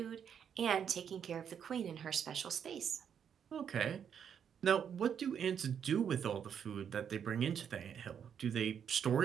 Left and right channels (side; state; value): left; quieter; 8.1 dB